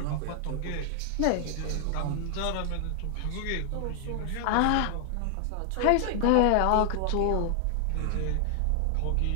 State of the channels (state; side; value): different; both; correlation 0.00